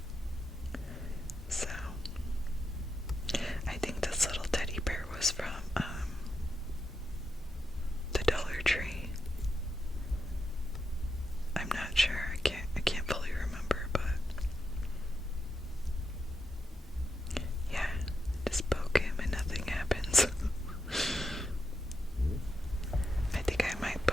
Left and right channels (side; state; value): both; normal; correlation 0.85